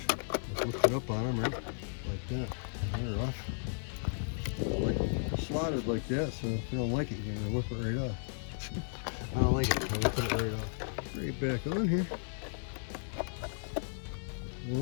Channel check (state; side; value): silent; right; 55 dB below the other